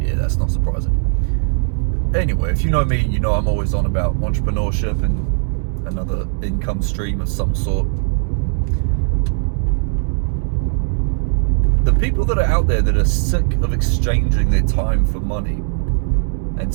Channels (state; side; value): silent; left; digital silence